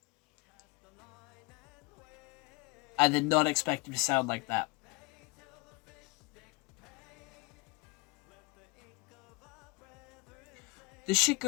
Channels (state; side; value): quieter; right; 26.3 dB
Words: I did not expect him to sound like that. This shit